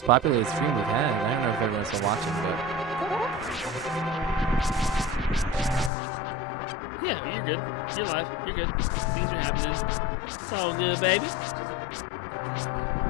populated stream we've had. I don't know if everyone's still watching, but Yeah, you're good. You're live. You're good. Things are happening. It's all good, baby. just engagement.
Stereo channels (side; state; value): right; drops out; at 5.9 s